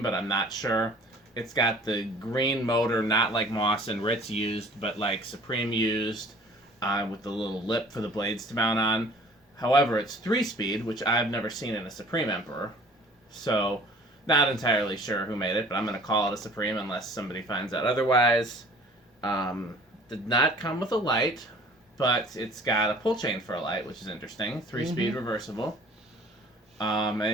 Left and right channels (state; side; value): normal; both; correlation 0.50